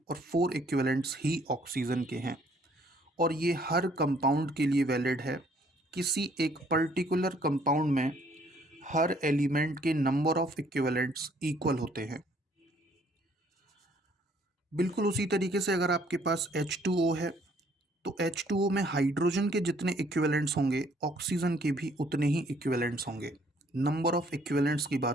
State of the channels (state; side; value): normal; both; correlation 0.63